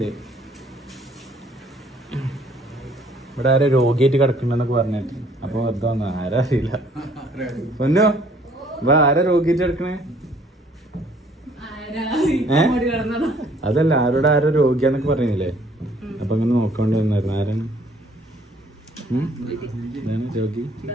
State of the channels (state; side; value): normal; both; correlation 0.60